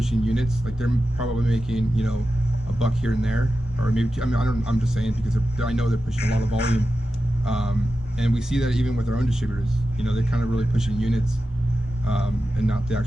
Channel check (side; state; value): both; normal; correlation 0.92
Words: units. Like they're probably making a buck here and there, or maybe I'm just saying because I know they're pushing a lot of volume. And we see that even with our own distributors, they're kind of really pushing units, and not the